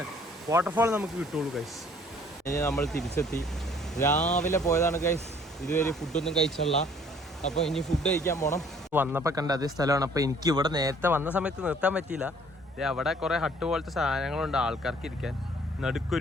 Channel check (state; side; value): normal; both; correlation 0.58